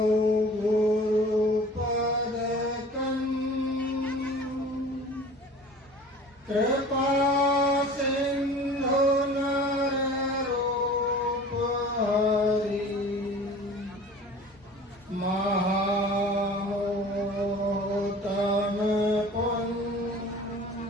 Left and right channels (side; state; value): both; normal; correlation 0.44